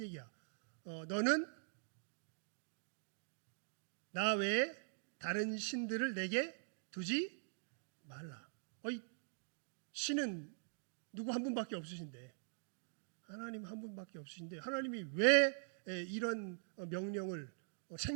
얘기야? 너는 나 외에 다른 신들을 내게 두지 말라. 신은 누구 한 분밖에 없으신데, 하나님 한 분밖에 없으신데 하나님이 왜 이런 명령을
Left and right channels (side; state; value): left; silent; digital silence